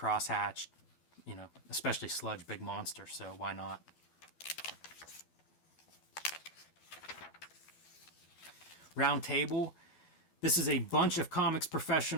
especially Sludge, big monster, so why not? Round Table. This is a bunch of comics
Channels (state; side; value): late; right; 12 ms